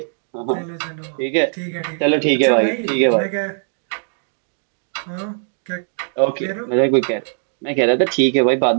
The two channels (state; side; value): silent; left; 66 dB below the other